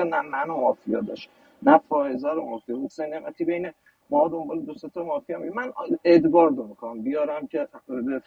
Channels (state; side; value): identical; both; correlation 1.00